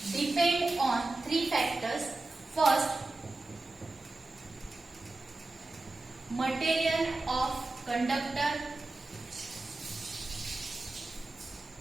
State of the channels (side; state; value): left; quieter; 3.1 dB